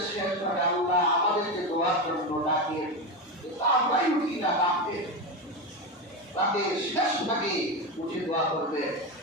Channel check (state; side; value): normal; both; correlation 0.15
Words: শেষ ভাগে আল্লাহ আমাদেরকে দোয়ার জন্য ডাকে, কিন্তু আমরাই উঠি না ডাকে, রাতের শেষ ভাগে উঠে দোয়া করবে।